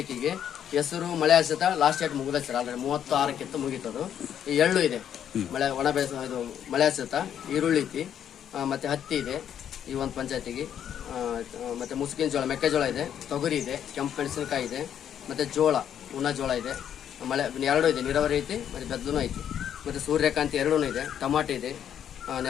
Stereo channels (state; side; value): quieter; right; 9.4 dB